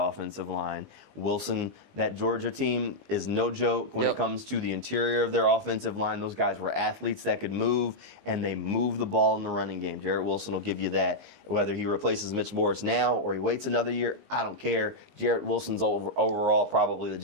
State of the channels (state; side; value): late; left; 19 ms